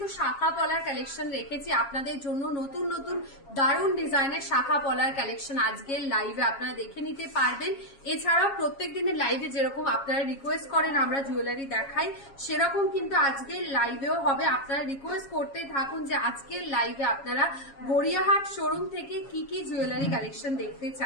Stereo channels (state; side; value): late; right; 7.3 ms